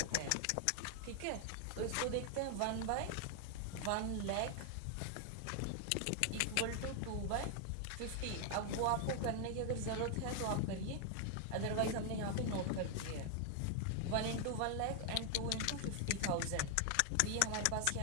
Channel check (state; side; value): different; both; correlation 0.00